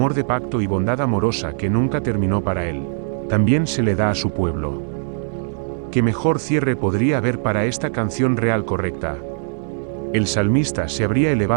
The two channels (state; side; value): silent; left; digital silence